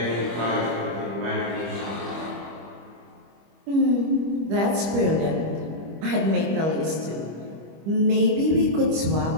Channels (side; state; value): left; late; 25 ms